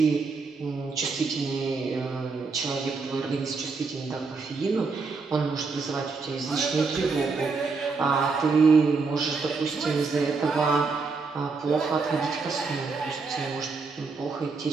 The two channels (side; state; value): left; quieter; 4.4 dB